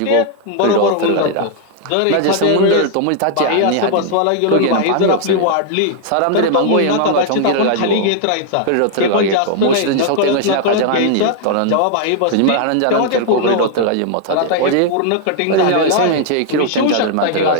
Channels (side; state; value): both; different; correlation 0.00